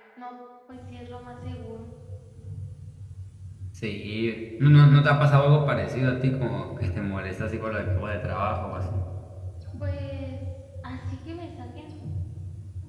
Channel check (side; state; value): both; identical; correlation 1.00